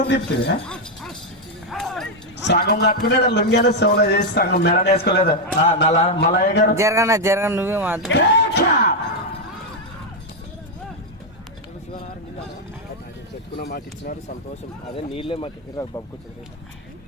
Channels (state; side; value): normal; both; correlation 0.01